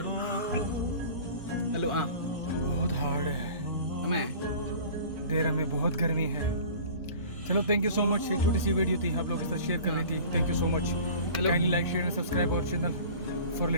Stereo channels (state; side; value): inverted; both; correlation -0.43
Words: हेलो हाँ बहुत हार्ड है। हमें देर में बहुत गर्मी है। चलो थैंक यू सो मच। एक छोटी सी वीडियो थी, आप लोगों के साथ शेयर करनी थी। Thank you so much. Hello. Kindly like, share and subscribe our channel for